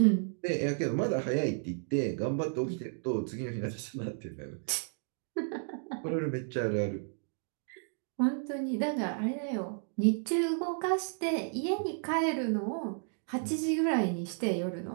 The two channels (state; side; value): silent; left; 56 dB below the other